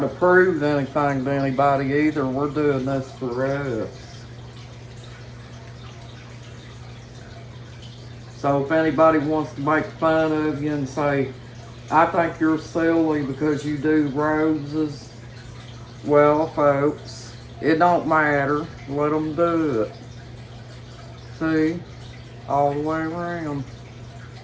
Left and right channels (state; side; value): identical; both; correlation 1.00